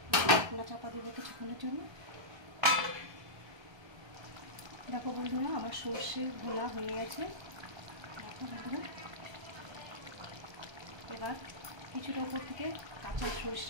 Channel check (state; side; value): late; left; 1.3 ms